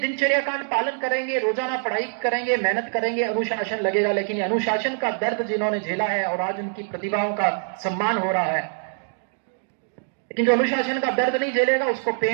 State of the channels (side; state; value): left; silent; digital silence